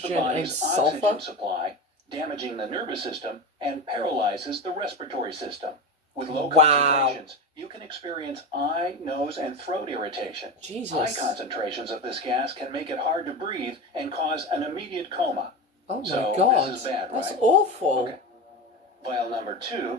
Hydrogen and body's sulfur? oxygen supply, damaging the nervous system, and paralyzes the respiratory system. With low Wow. concentrations, you can experience eye, nose, and throat irritation. High Jesus. concentrations of this gas can make it hard to breathe and cause an immediate coma. Oh my So, god. this is bad, That's right? awful. Okay. Vial number 2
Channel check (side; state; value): both; normal; correlation 0.23